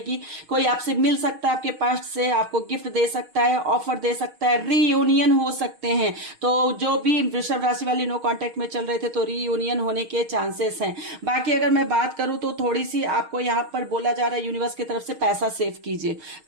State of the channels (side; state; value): left; late; 6.4 ms